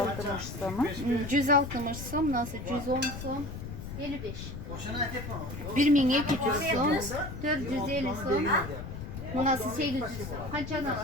somu. 160 som, nasıl 110 som, 55. 1200 som, 450 som, bu nasıl 800 som. Kaçan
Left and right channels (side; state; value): left; noise; rumble, 9 dB below the sound